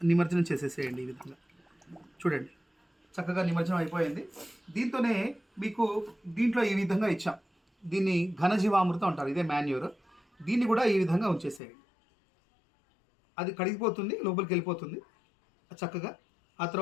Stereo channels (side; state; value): right; drops out; at 11.6 s